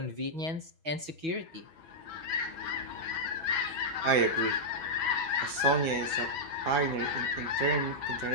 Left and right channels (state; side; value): late; left; 6.5 ms